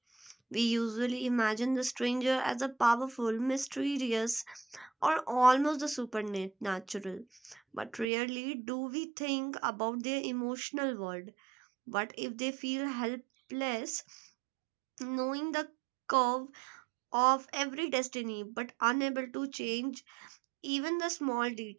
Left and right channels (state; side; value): drops out; left; at 8.1 s